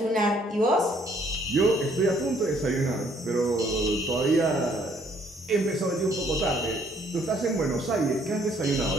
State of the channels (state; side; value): normal; both; correlation 0.64